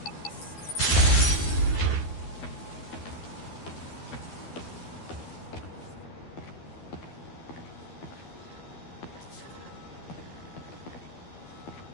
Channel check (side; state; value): right; late; 12 ms